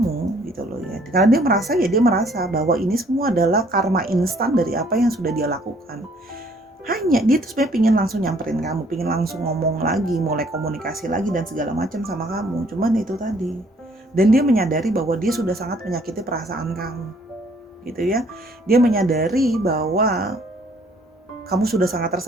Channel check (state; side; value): normal; both; correlation 0.61